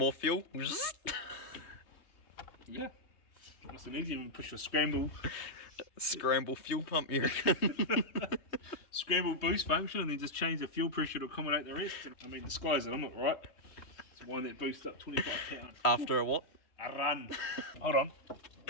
fuel. Yeah. Nice and easy when you push the scramble Fuel pump, you reckon? scramble boost function and then just change the fuel pressure to accommodate the rest. I mean, the sky's the limit, right? It's one that boosts up 25 pounds. After a what? A run. Hold on.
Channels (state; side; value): late; right; 3.1 ms